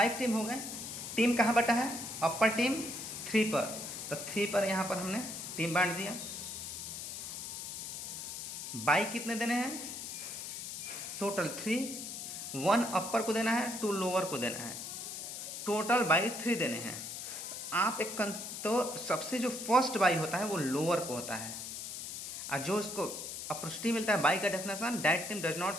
टीम हो गए। टीम कहाँ बटा है? अपर टीम 3 पर, तो 3 पर यहाँ पर हमने टीम बांट दिया। बाई कितने देने हैं? टोटल 3, 1 अपर को देना है, 2 लोअर को देना है, टोटल बाई 3 देने हैं। आप तो सबसे जो फर्स्ट बाई होता है वो लोअर को होता है, और जो इसको अपॉर्चुनिटी मिलता है बाई का definition, that team does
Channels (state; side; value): noise; left; hiss, 7 dB below the sound